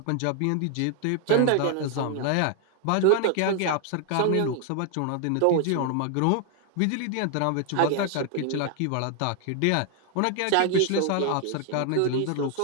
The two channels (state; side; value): different; both; correlation 0.00